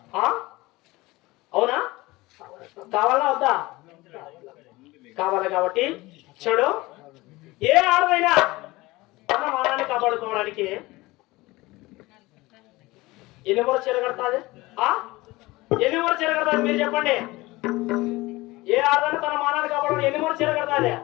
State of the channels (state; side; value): quieter; right; 20.7 dB